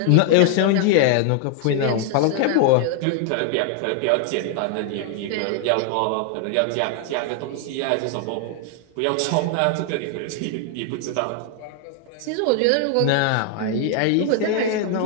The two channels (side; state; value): both; different; correlation 0.00